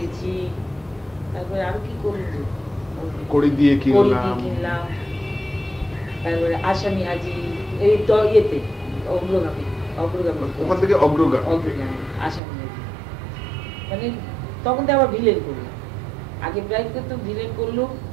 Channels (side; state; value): left; drops out; at 12.4 s